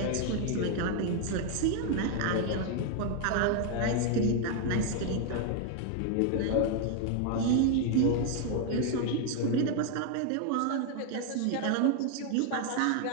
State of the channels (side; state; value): both; different; correlation 0.01